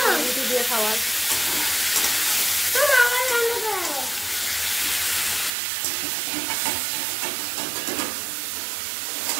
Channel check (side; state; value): left; drops out; at 5.5 s